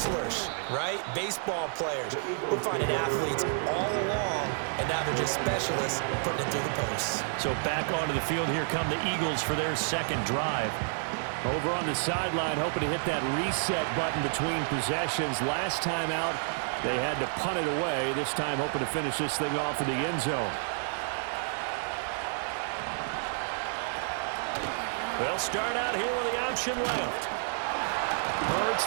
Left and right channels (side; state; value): left; silent; digital silence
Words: right? Baseball players. We're finding athletes all along, and now they're just specialists putting it through the posts. So back onto the field, here come the Eagles for their second drive. Over on the sideline, hoping to hit that reset button between possessions. Last time out, they had to punt it away. This time, hoping to finish this thing off in the end zone. They'll start out here with the option left. Hurts